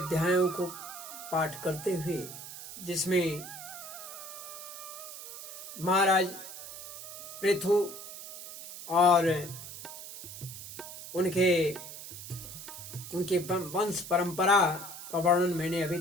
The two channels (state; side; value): noise; right; hiss, 11 dB below the sound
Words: को पाठ करते हुए, जिसमें महाराज पृथु और उनके वंश परंपरा का वर्णन मैंने अभी